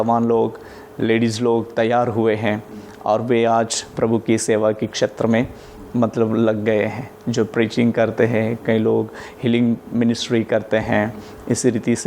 लोग, लेडीज़ लोग तैयार हुए हैं और वे आज प्रभु की सेवा के क्षेत्र में मतलब लग गए हैं। जो प्रीचिंग करते हैं, कई लोग हीलिंग मिनिस्ट्री करते हैं। इसी रीति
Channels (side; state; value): both; identical; correlation 1.00